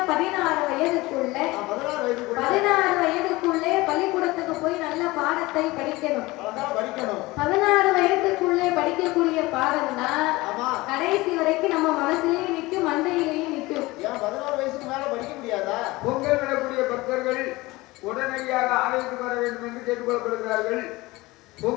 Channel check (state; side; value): quieter; right; 20.9 dB